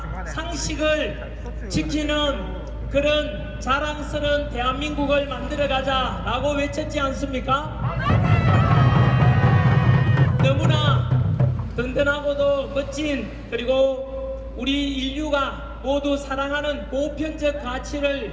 상식을 지키는 그런 자랑스러운 대한민국을 만들어가자 라고 외쳤지 않습니까? 너무나 든든하고도 멋진, 그리고 우리 인류가 모두 사랑하는 보편적 가치를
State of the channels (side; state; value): both; identical; correlation 1.00